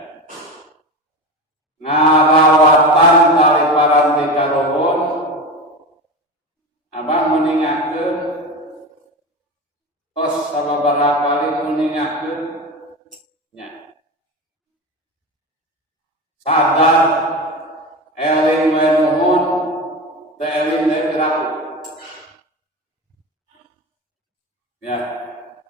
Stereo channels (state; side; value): normal; both; correlation 0.25